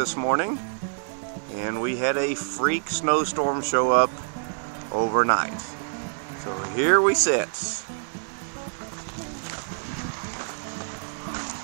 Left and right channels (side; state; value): left; silent; 55 dB below the other